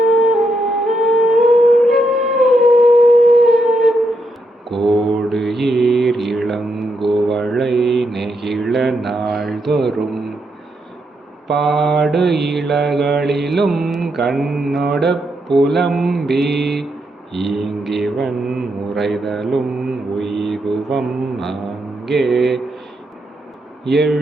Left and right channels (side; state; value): both; normal; correlation 0.80